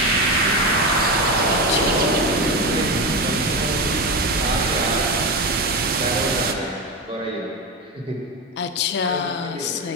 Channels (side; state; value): both; normal; correlation 0.17